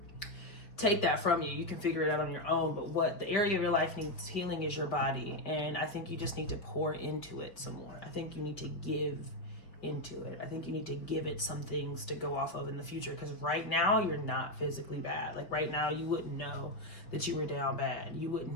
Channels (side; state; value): right; late; 5.2 ms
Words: take that from you. You can figure it out on your own, but what the area of your life needs healing is your body. And I think you just need to pour into it some more. I think you need to give into it. I think you need to give it some things to go off of in the future, because right now you're not physically bad. Like right now you wouldn't know that you were down bad. You